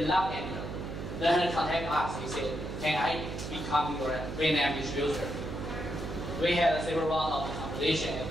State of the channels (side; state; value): right; noise; hum, 7 dB below the sound